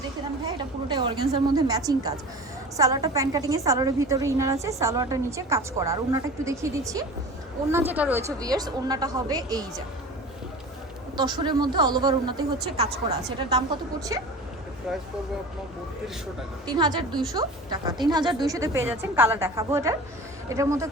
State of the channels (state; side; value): normal; both; correlation 0.36